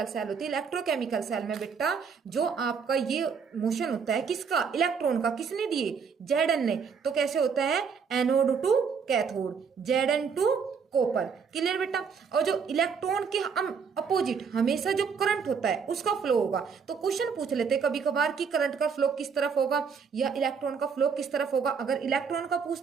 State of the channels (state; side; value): quieter; left; 6.1 dB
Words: सेल होती है, इलेक्ट्रोकेमिकल सेल में बेटा जो आपका ये मोशन होता है, किसका, इलेक्ट्रॉन का, किसने दिए, Zn ने। तो कैसे होता है, anode to cathode, Zn to copper. Clear बेटा। और जो इलेक्ट्रॉन के हम अपोजिट हमेशा जो करंट होता है उसका फ्लो होगा। तो क्वेश्चन पूछ लेते हैं कभी कभार कि करंट का फ्लो किस तरफ होगा या इलेक्ट्रॉन का फ्लो किस तरफ होगा। अगर इलेक्ट्रॉन का